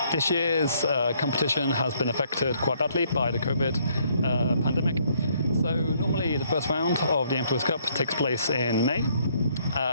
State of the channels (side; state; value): both; inverted; correlation -0.68